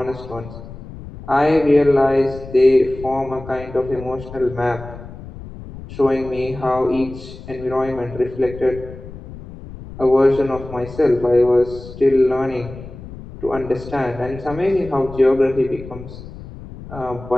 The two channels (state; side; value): noise; left; rumble, 14 dB below the sound